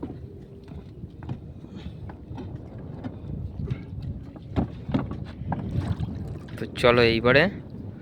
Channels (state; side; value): identical; both; correlation 1.00